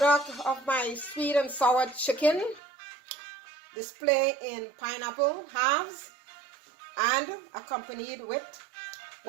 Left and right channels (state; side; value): drops out; left; at 2.6 s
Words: of my sweet and sour chicken. Display in pineapple halves and accompanied with